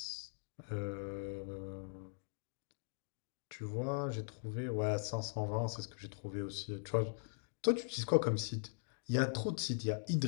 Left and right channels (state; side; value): silent; right; digital silence